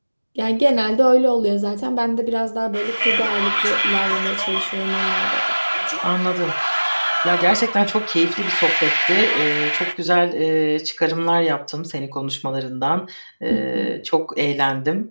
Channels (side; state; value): both; inverted; correlation -1.00